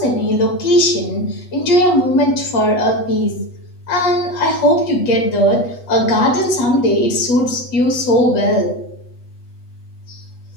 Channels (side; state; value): right; late; 8.2 ms